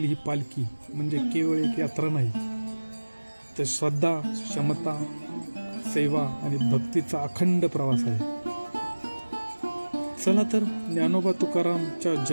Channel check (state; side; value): inverted; both; correlation -1.00